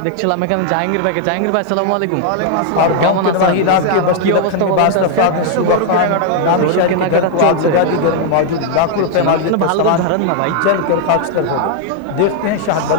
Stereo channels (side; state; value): both; different; correlation 0.00